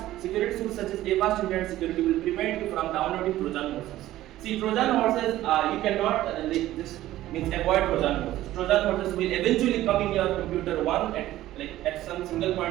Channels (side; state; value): left; quieter; 14.8 dB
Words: Security tools such as AVAS Internet Security will prevent you from downloading Trojan horses. See, Trojan horses, you cannot this means avoid Trojan horses. Trojan horses will eventually come in your computer at some single